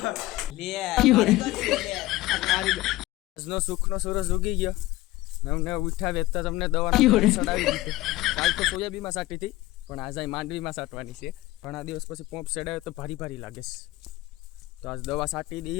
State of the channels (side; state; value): right; quieter; 17.9 dB